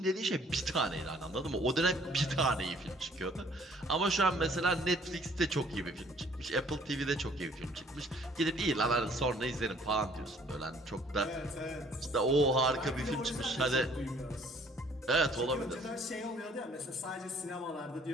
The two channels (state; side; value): normal; both; correlation 0.58